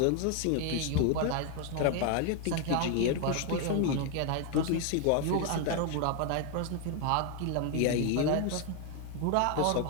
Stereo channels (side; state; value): both; different; correlation 0.01